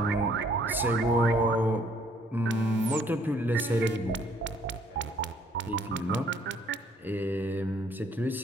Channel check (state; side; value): normal; both; correlation 0.63